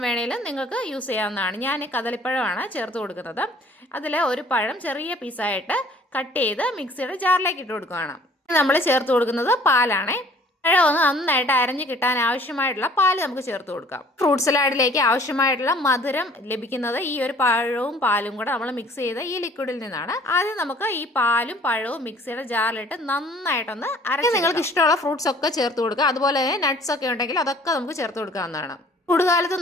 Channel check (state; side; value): normal; both; correlation 0.54